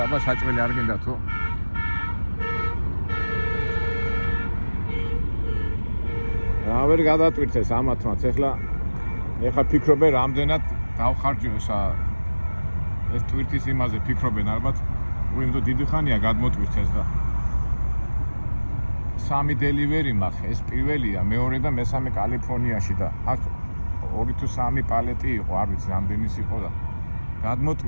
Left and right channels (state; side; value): inverted; both; correlation -1.00